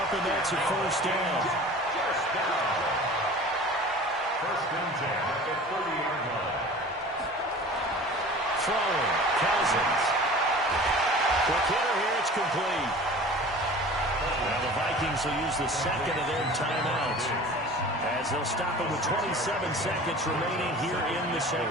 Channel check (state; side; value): normal; both; correlation 0.41